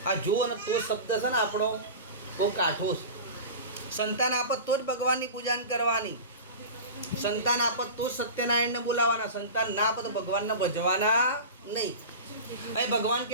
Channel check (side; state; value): both; inverted; correlation -0.30